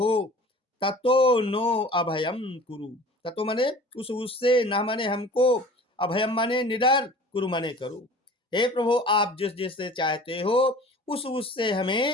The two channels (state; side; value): normal; both; correlation 0.43